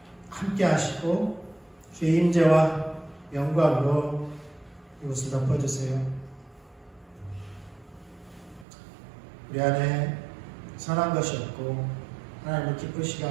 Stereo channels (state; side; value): drops out; left; at 8.7 s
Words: 함께 하시고 주의 임재와 영광으로 이곳을 덮어주세요. 우리 안에 선한 것이 없고 하나님을 기쁘시게